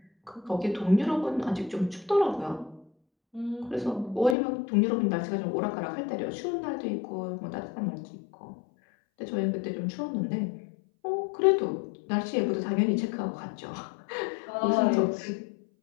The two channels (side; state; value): right; drops out; at 4.4 s